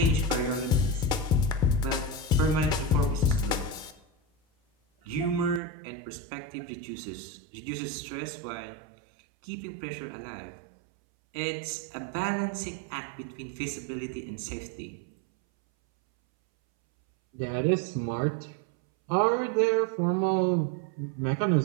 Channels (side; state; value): left; drops out; at 5.6 s